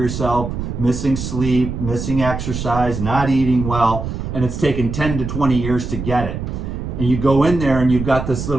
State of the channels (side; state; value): right; noise; rumble, 5 dB below the sound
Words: missing sleep, missing exercise, not eating well, and it's taken 10 to 20 years to get it. And you go in there and you've got this